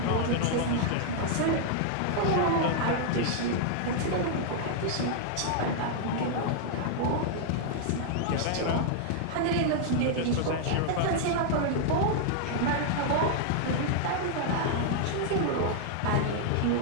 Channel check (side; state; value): both; different; correlation -0.01